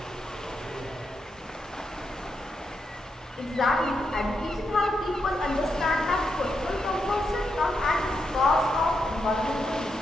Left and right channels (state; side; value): normal; both; correlation 0.83